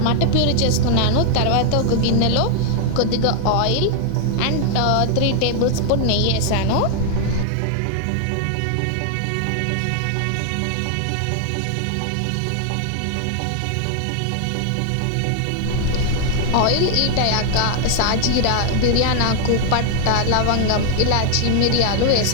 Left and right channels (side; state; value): both; different; correlation 0.00